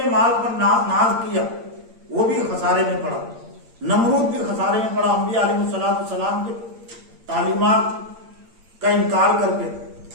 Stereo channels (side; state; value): left; late; 8.7 ms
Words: مال پر ناز کیا، وہ بھی خسارے میں پڑا. نمرود بھی خسارے میں پڑا، انبیاء علیہ السلام کے تعلیمات کا انکار کر کے.